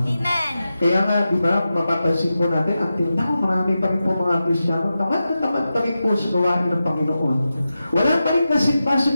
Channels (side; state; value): both; inverted; correlation -0.91